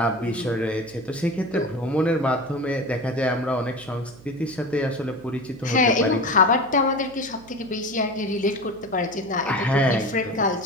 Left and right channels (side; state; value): right; noise; hum, 21 dB below the sound